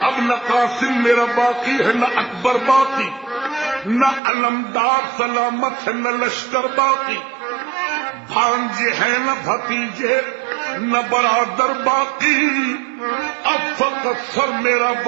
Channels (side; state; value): left; drops out; at 4.2 s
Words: اب نہ قاسم میرا باقی ہے نہ اکبر باقی، نہ علمدار سلامت ہے نہ لشکر باقی، بھانجے ہیں نہ بھتیجے نہ برادر باقی، اب فقط سر میرا